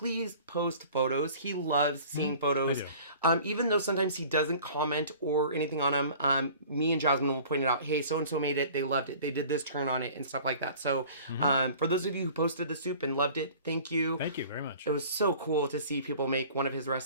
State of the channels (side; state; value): both; inverted; correlation -0.46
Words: post photos. He loves seeing photos. Even though sometimes he doesn't comment or anything on them, me and Jasmine will point it out. Hey, so-and-so made it. They loved it. They did this turn on it and stuff like that. So for those of you who posted the soup and loved it, thank you. Thank you very much. It was so cool to see people make one of his